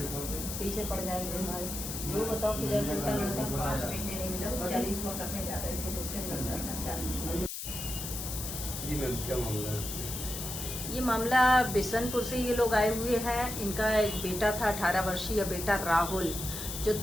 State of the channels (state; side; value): noise; left; hiss, 6 dB below the sound